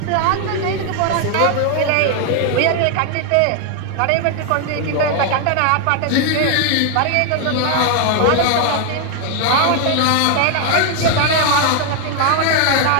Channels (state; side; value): different; both; correlation 0.00